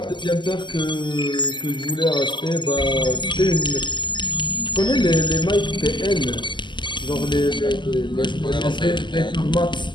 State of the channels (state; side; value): late; right; 0.22 ms